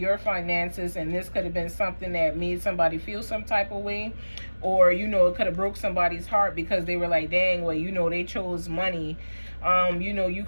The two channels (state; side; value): inverted; both; correlation -1.00